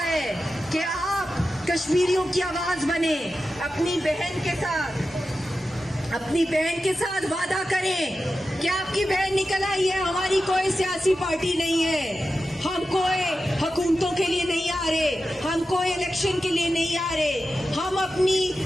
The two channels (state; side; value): normal; both; correlation 0.92